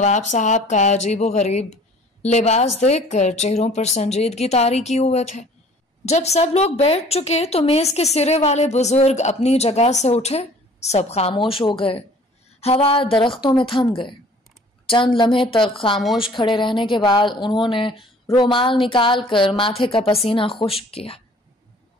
صاحب کا عجیب و غریب لباس دیکھ کر چہروں پر سنجیدگی طاری کیے ہوئے تھے۔ جب سب لوگ بیٹھ چکے تو میز کے سرے والے بزرگ اپنی جگہ سے اٹھے، سب خاموش ہو گئے، ہوا درختوں میں تھم گئے۔ چند لمحے تک خاموش کھڑے رہنے کے بعد انہوں نے رومال نکال کر ماتھے کا پسینہ خشک کیا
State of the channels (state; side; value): normal; both; correlation 0.51